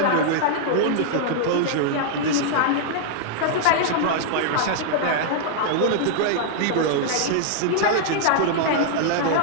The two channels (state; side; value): different; both; correlation -0.01